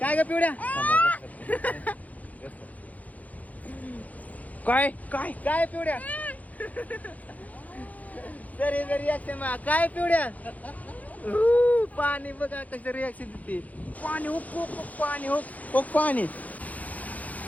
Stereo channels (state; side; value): late; right; 0.075 ms